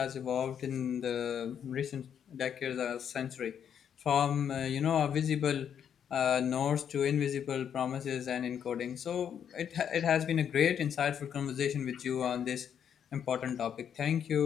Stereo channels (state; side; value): quieter; right; 8.5 dB